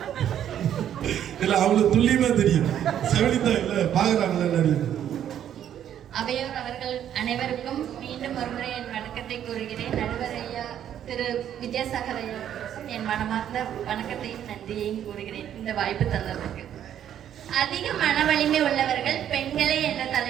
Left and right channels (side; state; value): left; quieter; 10.2 dB